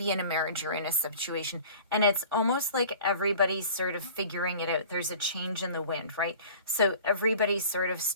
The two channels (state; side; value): inverted; both; correlation -0.44